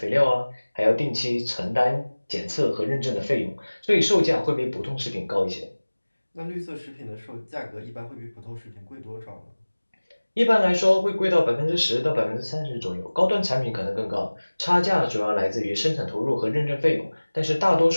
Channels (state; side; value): inverted; both; correlation -1.00